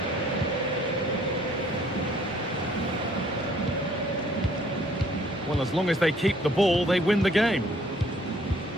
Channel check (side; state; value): both; normal; correlation 0.61